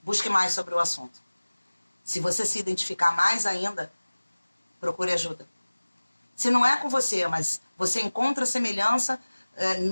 busque mais sobre o assunto. Se você se identificar mais ainda, procure ajuda. Se não é com você, mas você encontra semelhança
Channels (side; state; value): both; inverted; correlation -1.00